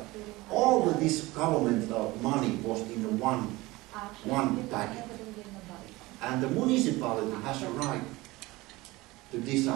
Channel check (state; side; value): quieter; left; 20.6 dB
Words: All of this governmental money was in one packet. And the municipality has a right to